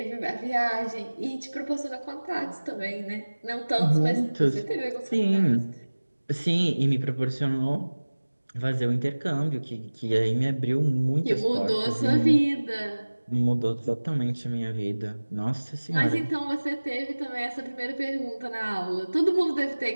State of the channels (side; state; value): both; inverted; correlation -1.00